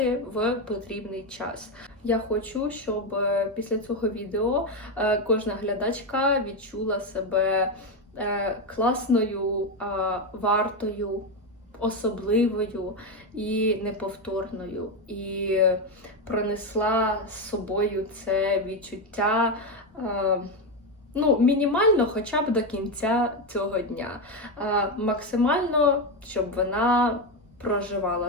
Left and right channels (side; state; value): both; normal; correlation 0.10